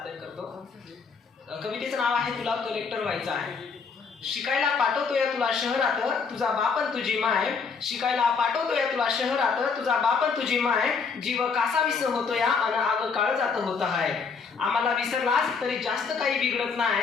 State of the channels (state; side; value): quieter; right; 5.3 dB